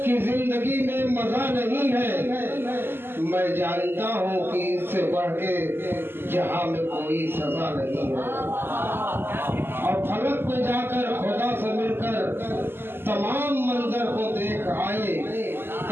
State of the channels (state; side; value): late; left; 0.11 ms